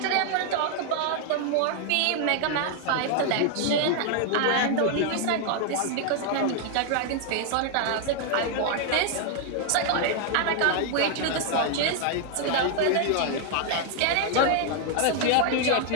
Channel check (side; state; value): both; different; correlation 0.00